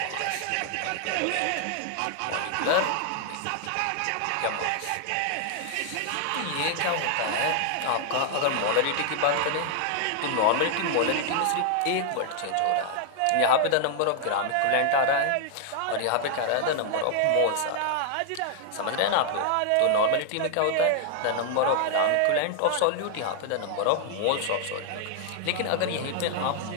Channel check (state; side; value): different; both; correlation 0.00